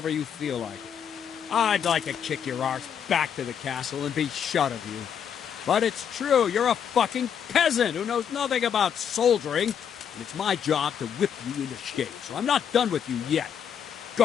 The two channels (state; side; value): quieter; right; 8.2 dB